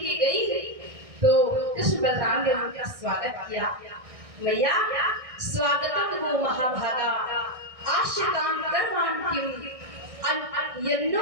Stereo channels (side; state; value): left; late; 1.6 ms